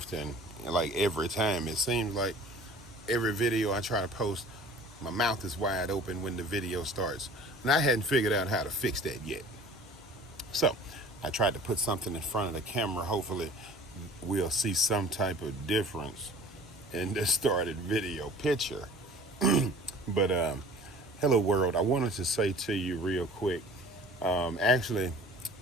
like every time, it seems like every video I try to post, my mouth is wide open when the video starts. And I hadn't figured out how to fix that yet. So I tried to put something in front of the camera. Hopefully, we'll see some type of difference in the started video picture. But hello, world. I wanted to say to you real quick. Actually,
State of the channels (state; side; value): normal; both; correlation 0.46